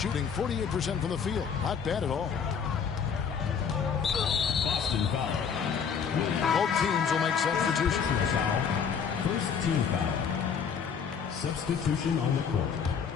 48% from the field. Not bad at all. Boston foul. Both teams will make substitutions. First team foul. Substitution on the court.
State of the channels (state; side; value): quieter; right; 6.8 dB